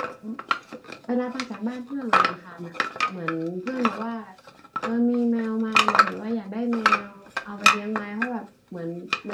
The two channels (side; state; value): both; identical; correlation 1.00